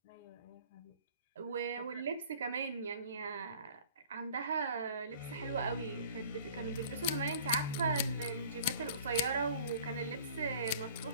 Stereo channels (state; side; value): inverted; both; correlation -0.49